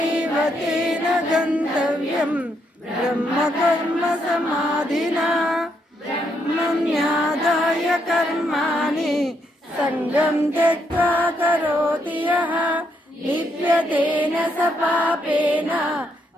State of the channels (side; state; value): both; normal; correlation 0.76